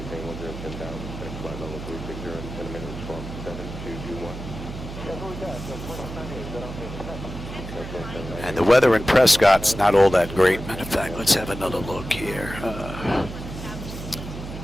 110,000. Flight level 360 in 10 minutes from 7221. That's what we got. So 2798. Is that okay? And the weather in Prescott's not all that great. Matter of fact, let's have another look here.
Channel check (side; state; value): right; noise; hum, 9 dB below the sound